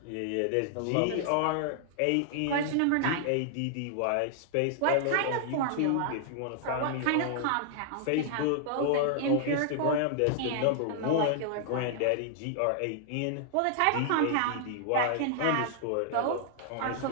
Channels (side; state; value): both; different; correlation -0.01